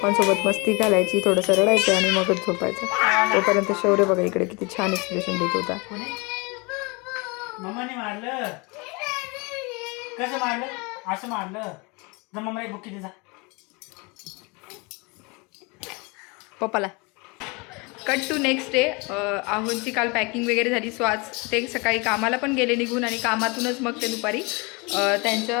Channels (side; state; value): right; quieter; 28.5 dB